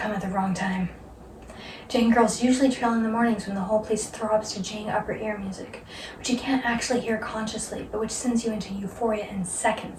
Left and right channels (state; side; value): identical; both; correlation 1.00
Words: at the wrong time. Jane girls usually trail in the mornings when the whole place throbs to Jane upper ear music, which you can't actually hear consciously, but which sends you into euphoria in